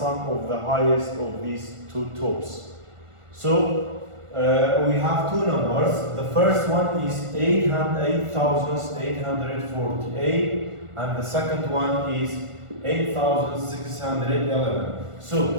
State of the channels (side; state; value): left; late; 1.4 ms